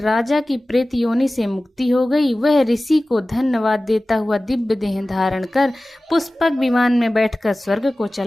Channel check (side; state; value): both; normal; correlation 0.97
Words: की प्रेत योनि से मुक्ति हो गई। वह ऋषि को धन्यवाद देता हुआ दिव्य देह धारण कर पुष्पक विमान में बैठकर स्वर्ग को